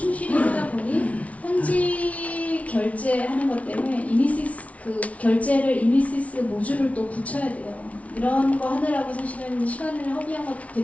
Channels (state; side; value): late; right; 0.066 ms